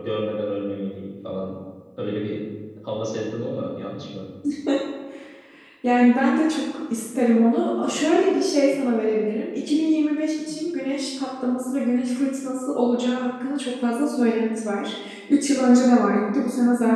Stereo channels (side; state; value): both; identical; correlation 1.00